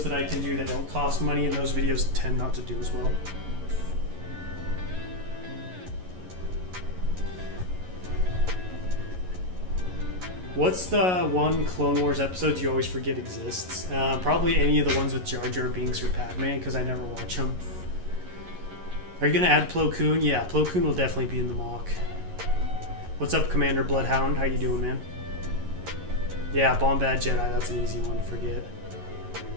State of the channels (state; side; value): late; left; 11 ms